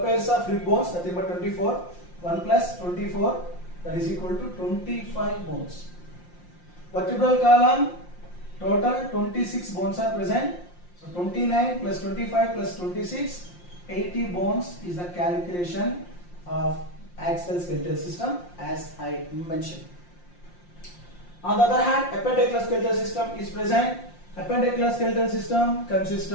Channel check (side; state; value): right; late; 5.7 ms